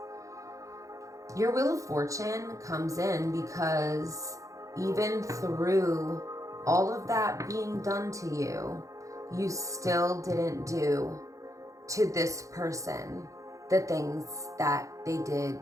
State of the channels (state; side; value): late; left; 0.16 ms